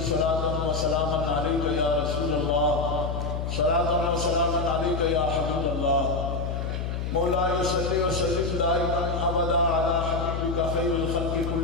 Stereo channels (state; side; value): noise; left; hum, 3 dB below the sound